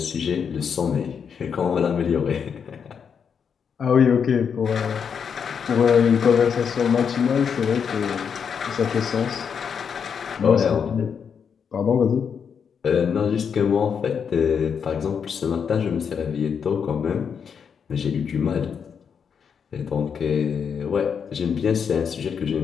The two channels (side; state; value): right; quieter; 6.9 dB